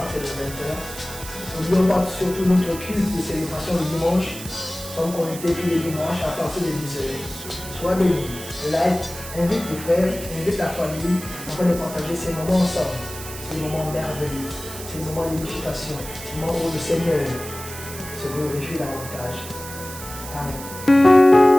de 20h. N'oublions pas surtout notre culte de célébration le dimanche. Nous sommes connectés tous les dimanches à partir de 10h. Sois béni, like, invite tes frères, invite ta famille afin de partager ces moments ensemble. Ces moments merveilleux, ces moments d'édification, ces moments où le Seigneur se glorifie davantage. Amen.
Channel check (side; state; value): right; noise; hiss, 12 dB below the sound